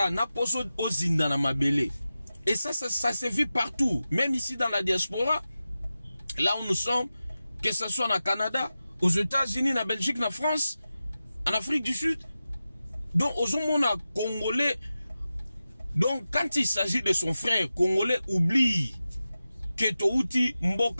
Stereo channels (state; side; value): inverted; both; correlation -0.94